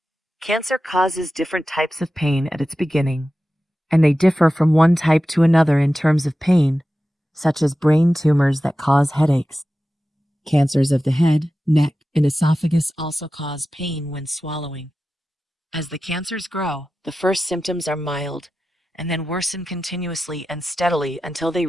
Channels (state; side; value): normal; both; correlation 0.94